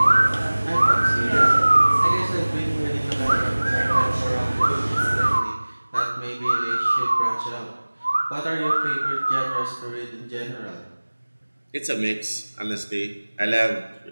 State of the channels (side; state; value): both; inverted; correlation -1.00